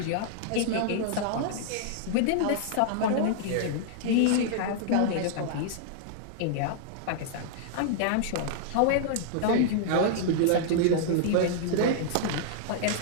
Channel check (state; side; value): different; both; correlation -0.01